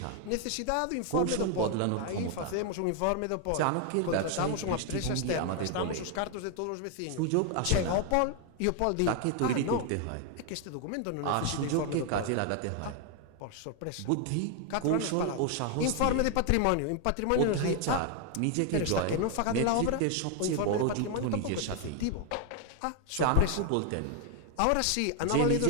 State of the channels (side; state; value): both; different; correlation 0.01